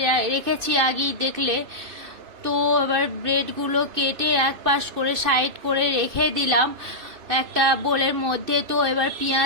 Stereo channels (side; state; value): left; late; 2.6 ms